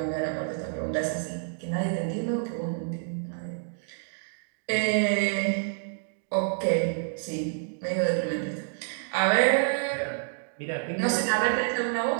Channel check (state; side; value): silent; left; digital silence